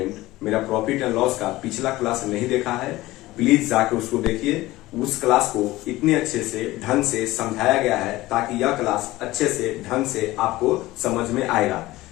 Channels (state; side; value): quieter; right; 18.0 dB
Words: मेरा प्रॉफिट एंड लॉस का पिछला क्लास नहीं देखा है, प्लीज जाके उसको देखिए। उस क्लास को इतने अच्छे से ढंग से समझाया गया है ताकि यह क्लास अच्छे से ढंग से आपको समझ में आएगा।